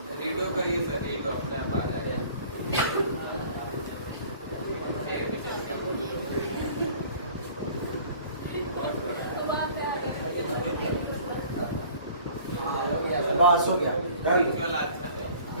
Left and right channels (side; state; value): both; inverted; correlation -0.50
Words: रीडो करिए सर, रीडो अपने आप आ जाएगा। बस हो गया,